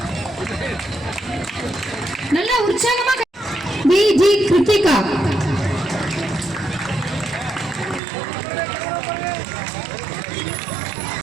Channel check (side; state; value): left; drops out; at 8.0 s